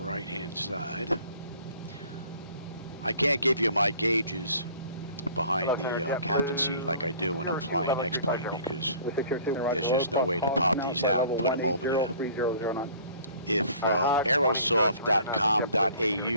side. I can't give you my gauges behind the captain seat like I do when I'm flying X-Plane because there's just no way to pop these out and put them over there. If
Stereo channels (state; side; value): inverted; both; correlation -0.51